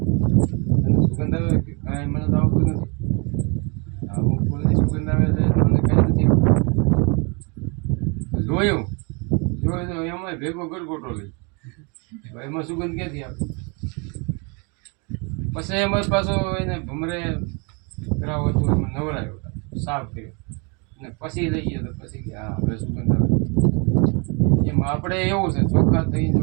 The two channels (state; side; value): quieter; left; 32.7 dB